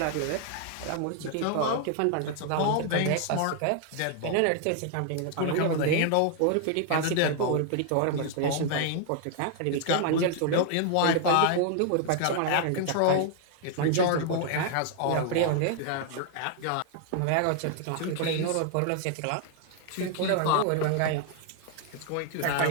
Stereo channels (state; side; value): different; both; correlation 0.00